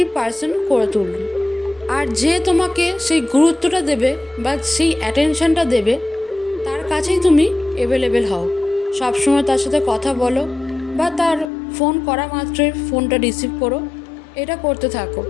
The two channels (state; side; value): drops out; right; at 11.5 s